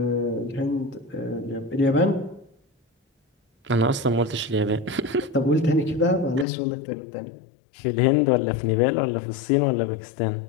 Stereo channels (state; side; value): drops out; right; at 6.5 s